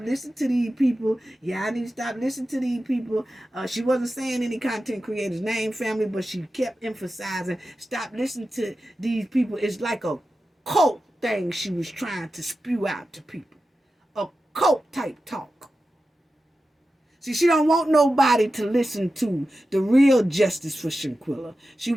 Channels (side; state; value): both; normal; correlation 0.92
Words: to these people. Yeah, I need to stop listening to these people. She wasn't saying any content creator's name, family, but she kept emphasizing, stop listening to these people. It's like a cult thing she was trying to spew out to people. A cult type talk. See, she don't want nobody to listen to the real justice for Shanquella. She